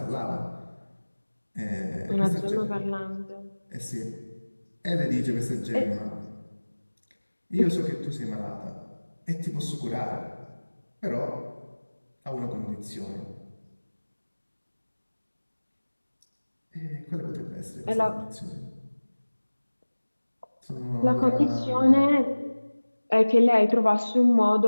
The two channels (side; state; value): both; inverted; correlation -1.00